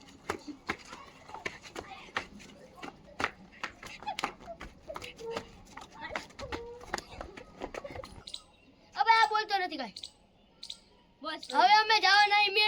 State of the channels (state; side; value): identical; both; correlation 1.00